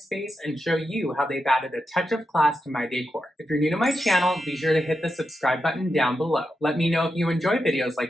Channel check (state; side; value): normal; both; correlation 0.88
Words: and show you how they've added a touch of class to my decor. If you're new to my channel, be sure to hit the subscribe button down below. Let me know if you enjoy videos